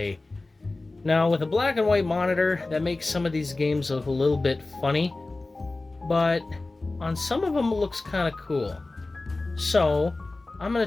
Now, with a black and white monitor, that makes some of these games look a little bit funny, but on some of them it looks kind of cool. So, I'm going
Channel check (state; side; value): quieter; right; 3.2 dB